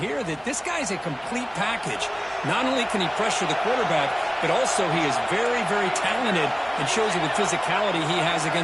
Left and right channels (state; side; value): identical; both; correlation 1.00